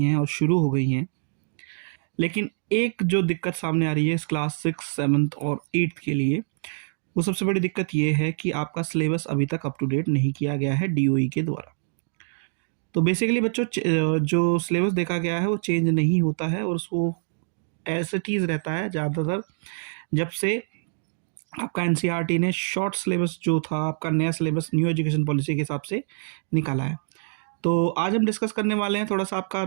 और शुरू हो गई हैं। लेकिन एक जो दिक्कत सामने आ रही है इस क्लास 6, 7 और 8 के लिए, वो सबसे बड़ी दिक्कत ये है कि आपका सिलेबस अभी तक अप टू डेट नहीं किया गया है डीओई के द्वारा। तो बेसिकली बच्चों, जो सिलेबस देखा गया है वो चेंज नहीं होता है और उसको एज इट इज़ रहता है ज़्यादातर। जब से आपका एनसीईआरटी ने शॉर्ट सिलेबस जो था, आपका नया सिलेबस न्यू एजुकेशन पॉलिसी के हिसाब से निकाला है। तो आज हम डिस्कस करने वाले हैं थोड़ा सा आपका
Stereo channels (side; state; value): left; silent; digital silence